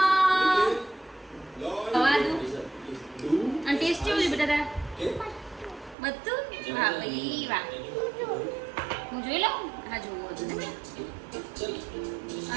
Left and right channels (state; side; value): drops out; left; at 6.0 s